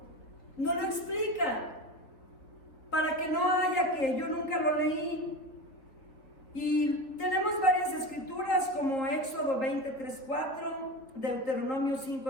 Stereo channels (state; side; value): late; right; 4.1 ms